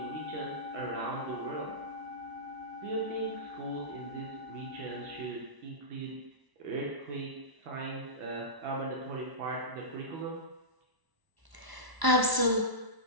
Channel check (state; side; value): late; left; 1.0 ms